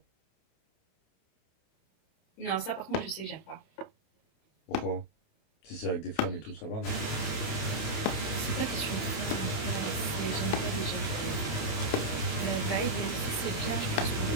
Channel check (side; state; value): right; late; 28 ms